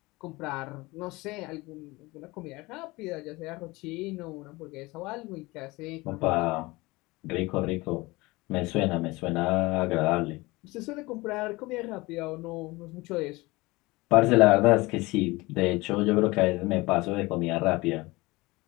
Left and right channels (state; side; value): quieter; right; 22.2 dB